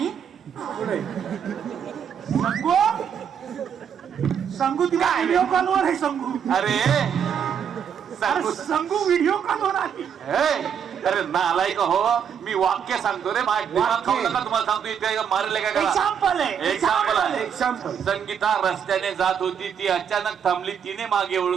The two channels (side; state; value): left; quieter; 7.9 dB